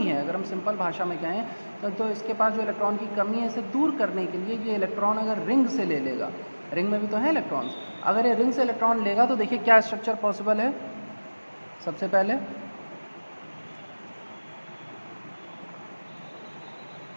है, अगर हम सिंपल भाषा में कहें तो इसके पास जो इलेक्ट्रॉन की कमी है इसे दूर करने के लिए ये इलेक्ट्रॉन अगर रिंग से ले लेगा, रिंग में भी तो है इलेक्ट्रॉन्स, अगर ये रिंग से इलेक्ट्रॉन लेगा तो देखिए क्या स्ट्रक्चर पॉसिबल है। सबसे पहले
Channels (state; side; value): inverted; both; correlation -1.00